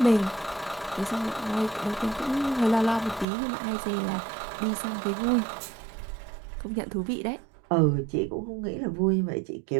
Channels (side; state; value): left; drops out; at 3.2 s